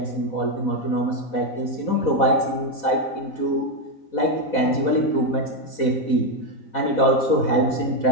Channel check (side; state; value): right; late; 4.1 ms